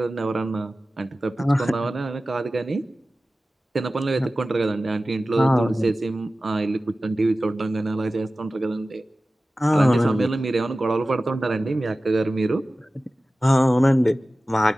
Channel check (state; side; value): normal; both; correlation 0.96